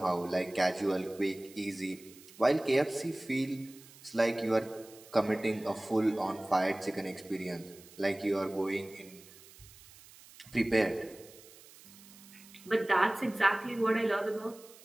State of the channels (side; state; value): right; noise; hiss, 21 dB below the sound